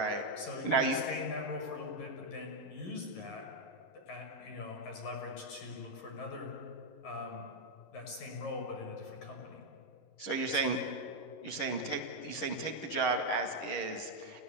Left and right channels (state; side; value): late; right; 11 ms